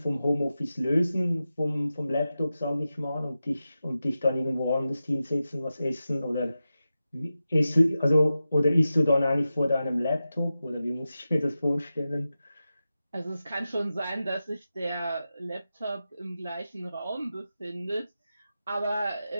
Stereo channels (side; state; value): both; inverted; correlation -0.92